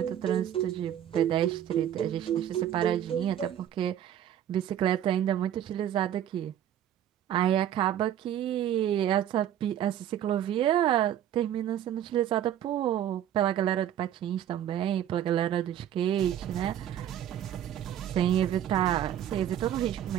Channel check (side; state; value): left; quieter; 10.8 dB